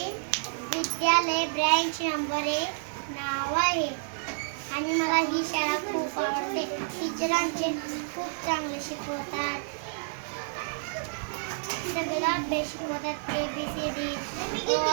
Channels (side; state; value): left; silent; digital silence